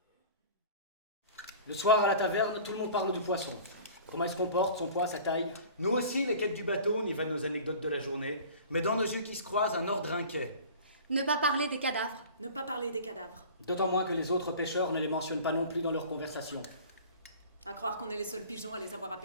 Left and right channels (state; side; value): inverted; both; correlation -0.42